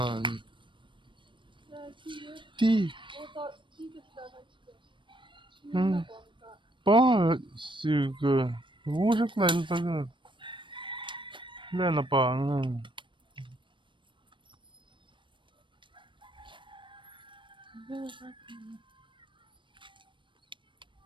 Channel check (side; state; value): left; late; 0.24 ms